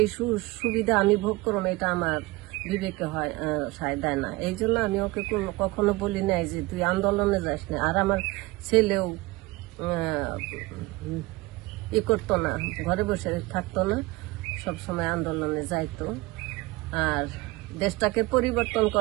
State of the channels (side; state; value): left; quieter; 21.2 dB